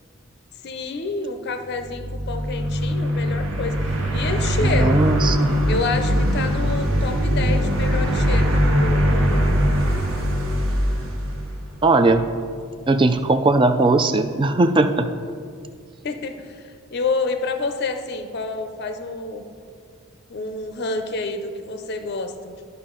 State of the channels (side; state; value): both; normal; correlation 0.65